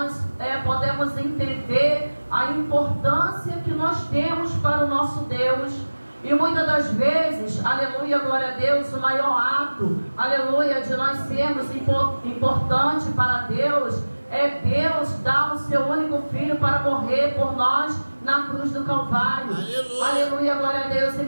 podemos entender a importância que nós temos para o nosso Deus. E muitas das vezes, aleluia, glória a Deus, o maior ato, aleluia, de nós sermos importante para Deus é Deus dar o seu único filho para morrer por nós na cruz do Calvário. Aleluia, aleluia, glória a Deus. E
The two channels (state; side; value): inverted; both; correlation -1.00